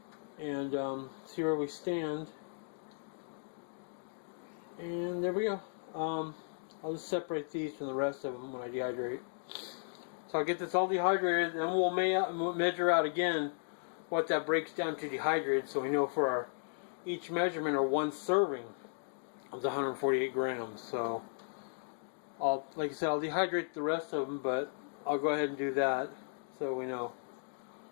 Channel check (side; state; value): right; silent; digital silence